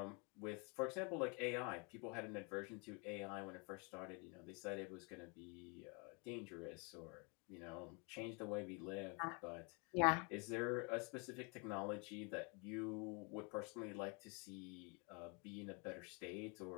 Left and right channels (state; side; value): quieter; right; 33.1 dB